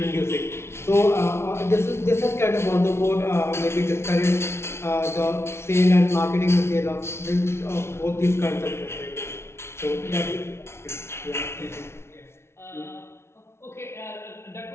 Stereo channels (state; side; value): late; right; 0.12 ms